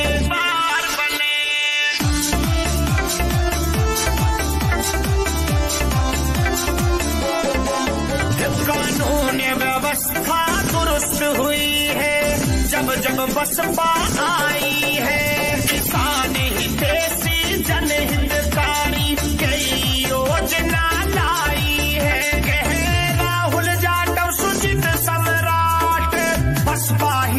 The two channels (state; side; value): identical; both; correlation 1.00